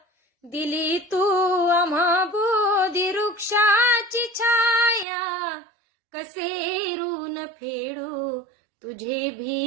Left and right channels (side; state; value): left; drops out; at 5.1 s